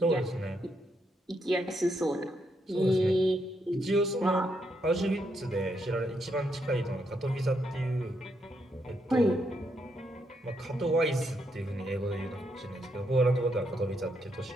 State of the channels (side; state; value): both; normal; correlation 0.78